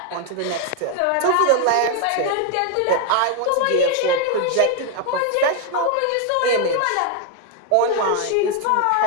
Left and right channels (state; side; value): different; both; correlation 0.01